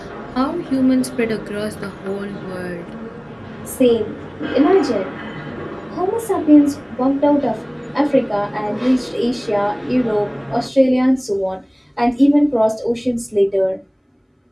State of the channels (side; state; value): both; identical; correlation 1.00